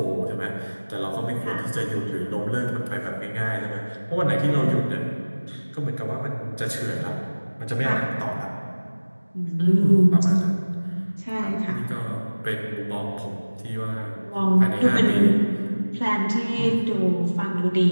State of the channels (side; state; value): both; inverted; correlation -1.00